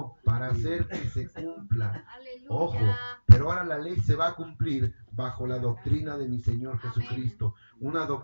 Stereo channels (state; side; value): inverted; both; correlation -1.00